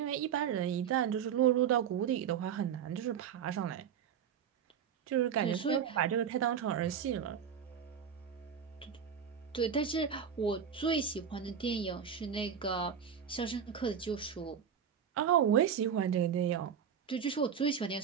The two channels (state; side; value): quieter; left; 7.8 dB